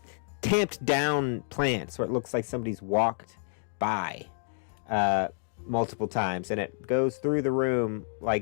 tamped down plants where it looks like somebody's walked by multiple times. And it goes through the room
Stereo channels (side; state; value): right; silent; digital silence